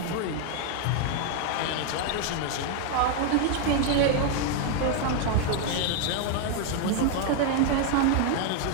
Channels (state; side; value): different; both; correlation 0.01